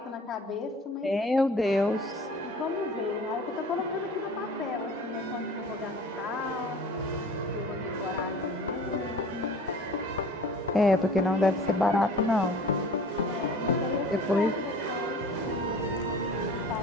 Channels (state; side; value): normal; both; correlation 0.44